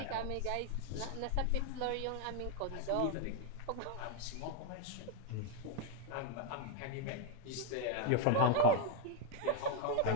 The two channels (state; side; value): different; both; correlation 0.01